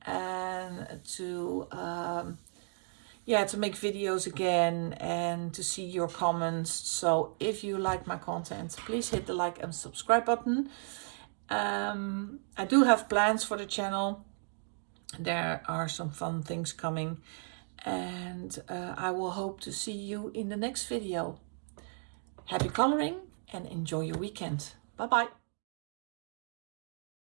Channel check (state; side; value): silent; left; 55 dB below the other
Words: and to to make videos again and to see your comments. So if you like my content, please hit the like and subscribe button. I do have plans for the channel. There are some fun things coming, and I will hope to see you in the next video. Happy coloring and enjoy your weekend. Bye bye.